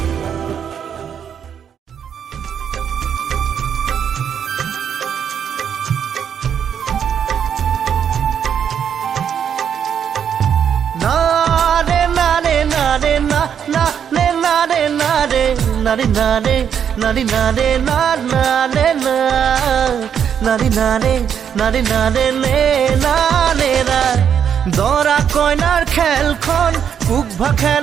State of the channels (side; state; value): left; quieter; 8.2 dB